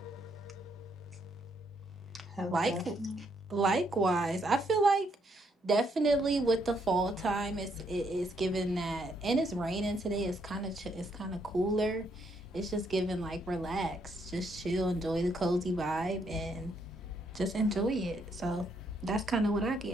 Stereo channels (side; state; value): both; normal; correlation 0.73